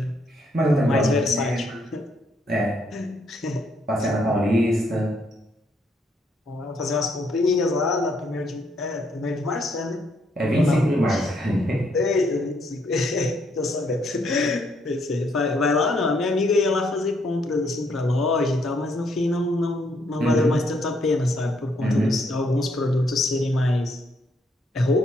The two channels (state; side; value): normal; both; correlation 0.72